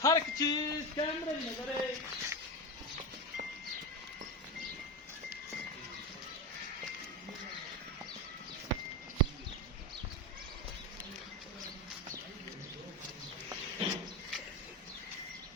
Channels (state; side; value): normal; both; correlation 0.18